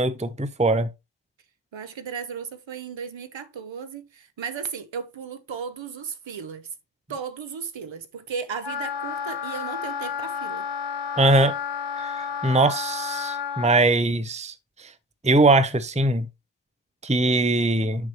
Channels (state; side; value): normal; both; correlation 0.39